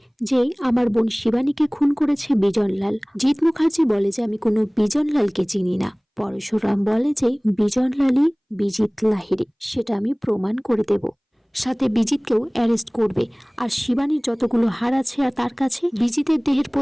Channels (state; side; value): identical; both; correlation 1.00